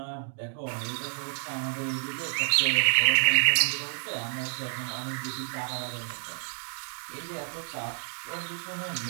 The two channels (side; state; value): left; silent; 58 dB below the other